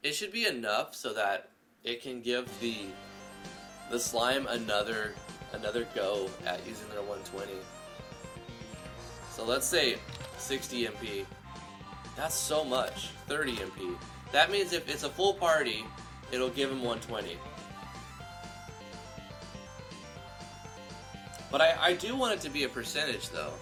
It should be enough so that it can give the slime another go at using their 120. So let's say 60 MP. That's so much. 30 MP. That means if it's a full party, it'll give him 120. But I do want it to be a percentage though.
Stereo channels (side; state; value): both; identical; correlation 1.00